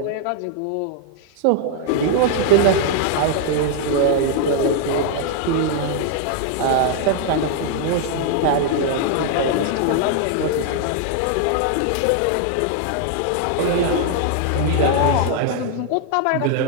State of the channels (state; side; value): different; both; correlation 0.00